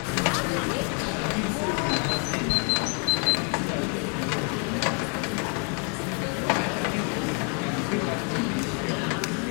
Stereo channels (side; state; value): right; quieter; 39.3 dB